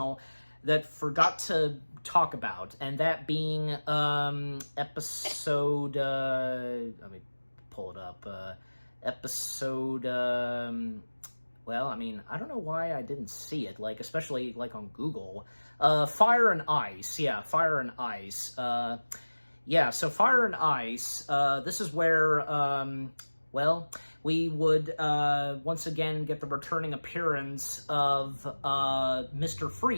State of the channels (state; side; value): inverted; both; correlation -1.00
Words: that forgot to talk about, and that being episode, let me pull it up, episode, well, I don't know why I didn't see it, especially, on Google. Fire and Ice. Yeah, Fire and Ice. So Fire and Ice, this is where, we would, once again get the returning appearance of, Mr.